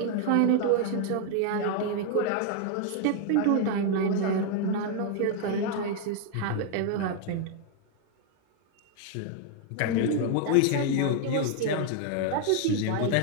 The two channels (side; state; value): both; different; correlation 0.00